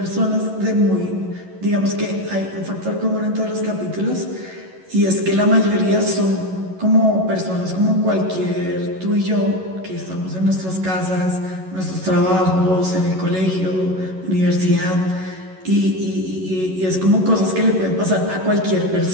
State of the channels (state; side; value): late; left; 11 ms